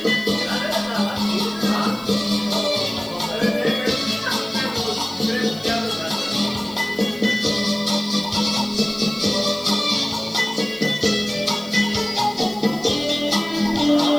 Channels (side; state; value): left; noise; hiss, 23 dB below the sound